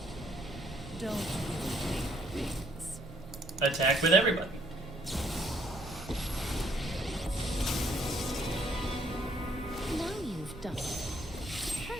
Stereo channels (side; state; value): both; normal; correlation 0.67